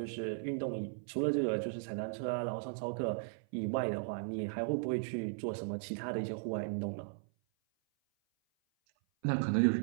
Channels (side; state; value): left; silent; 53 dB below the other